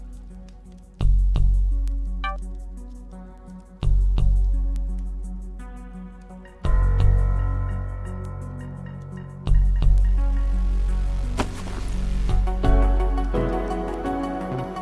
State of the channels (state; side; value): identical; both; correlation 1.00